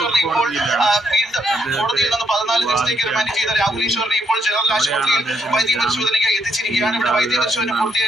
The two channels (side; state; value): both; normal; correlation 0.75